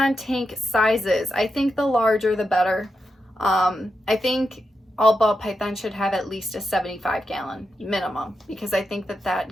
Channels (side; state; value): both; normal; correlation 0.87